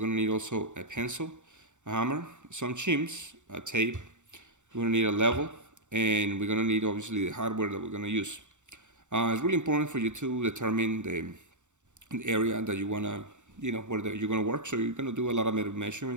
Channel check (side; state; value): left; late; 0.85 ms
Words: to need also a pencil, a hammer, some chims, a tape. We're going to need a level, and we're going to need obviously the hardware that we're going to use. It's really important for you to determine the area that you want to, where you're going to work. So you're going to do a lot of